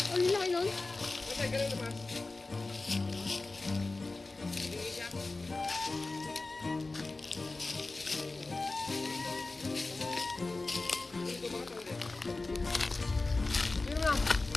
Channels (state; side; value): quieter; right; 3.4 dB